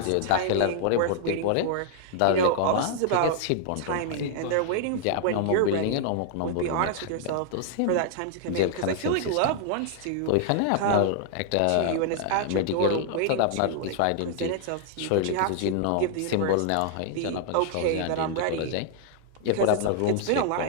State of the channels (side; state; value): both; different; correlation -0.01